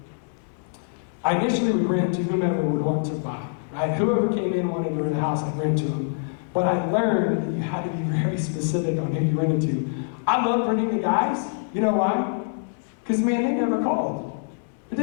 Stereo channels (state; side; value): silent; right; 62 dB below the other